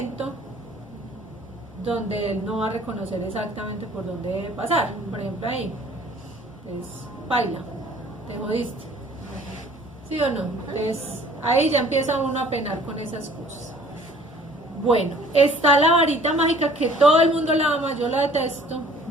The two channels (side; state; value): both; normal; correlation 0.53